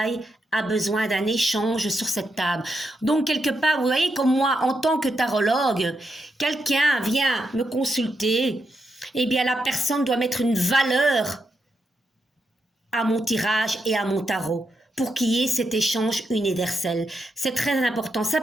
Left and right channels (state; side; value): normal; both; correlation 0.83